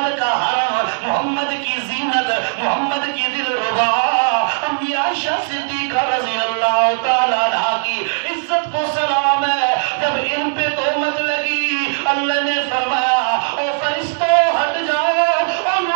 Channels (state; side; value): silent; left; digital silence